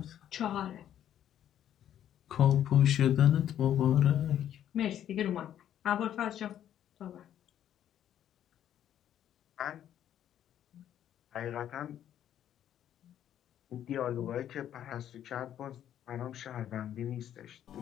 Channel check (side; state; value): right; quieter; 10.7 dB